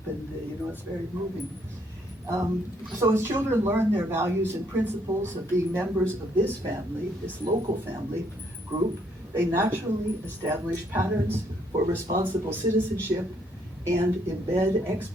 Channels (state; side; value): normal; both; correlation 0.69